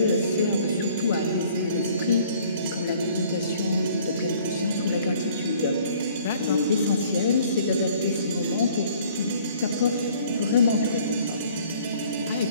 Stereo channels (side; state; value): both; inverted; correlation -0.56